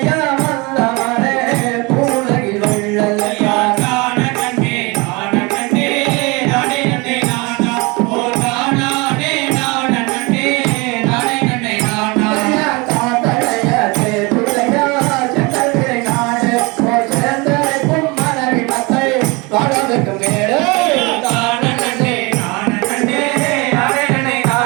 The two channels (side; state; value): left; quieter; 26.6 dB